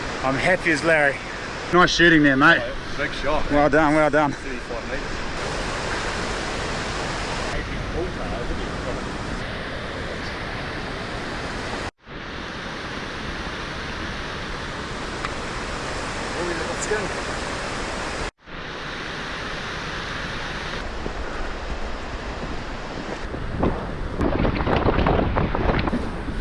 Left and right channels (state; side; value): identical; both; correlation 1.00